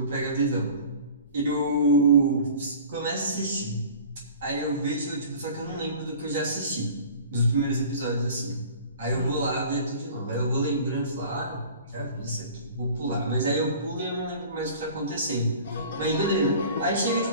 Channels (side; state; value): both; inverted; correlation -0.44